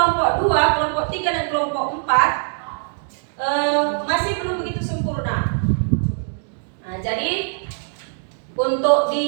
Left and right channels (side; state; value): left; silent; 61 dB below the other